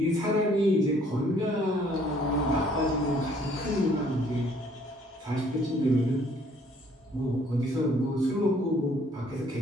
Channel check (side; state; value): both; normal; correlation 0.61